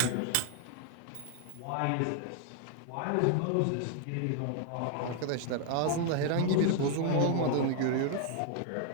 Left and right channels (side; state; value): both; different; correlation 0.00